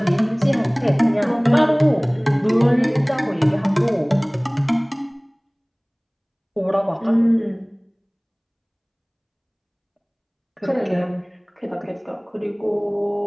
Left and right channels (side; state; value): both; identical; correlation 1.00